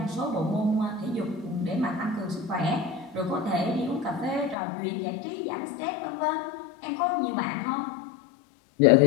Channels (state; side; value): drops out; right; at 4.5 s